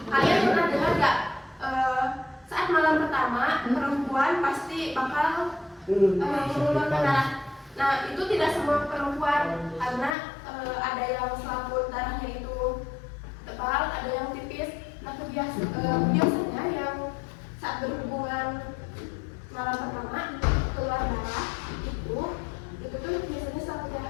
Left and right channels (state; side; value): drops out; right; at 10.2 s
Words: Kalian pernah dengar nggak saat malam pertama perempuan pasti bakal mengeluarkan darah? Nah, itu tidak semua perempuan, karena ada yang selaput darahnya itu tebal, ada yang tipis. Nah, biasanya yang saat berhubungan malam pertama keluar darah itu tuh biasanya